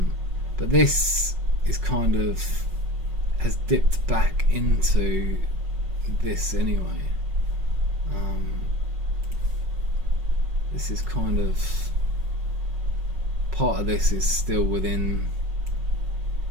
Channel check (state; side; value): late; left; 5.4 ms